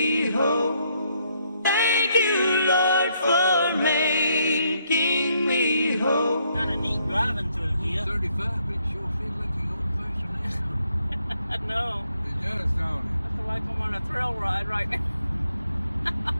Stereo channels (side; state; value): both; inverted; correlation -0.72